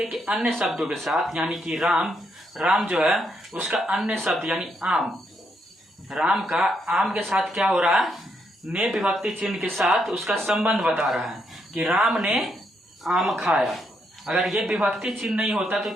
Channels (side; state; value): both; normal; correlation 0.77